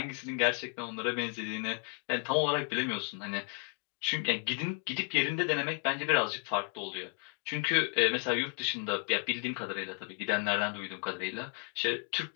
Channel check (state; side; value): quieter; right; 37.7 dB